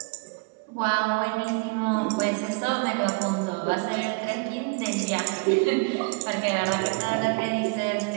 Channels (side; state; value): left; quieter; 30.4 dB